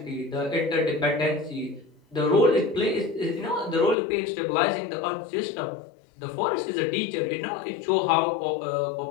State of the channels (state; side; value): drops out; right; at 4.0 s